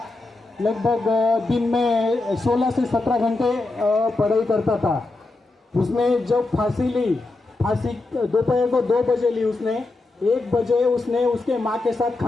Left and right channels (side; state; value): right; quieter; 3.2 dB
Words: लगभग दिन में 16 से 17 घंटे पढ़ाई करता था। उसने जब फांसी ली, फांसी दोपहर को 2 बजे ली उसने। 1 बजे उसने उसके माँ के साथ